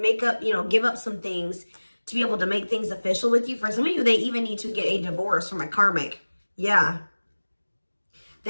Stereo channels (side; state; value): both; inverted; correlation -1.00